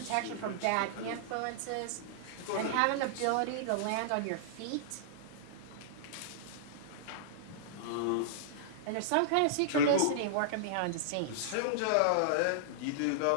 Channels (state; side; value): different; both; correlation -0.02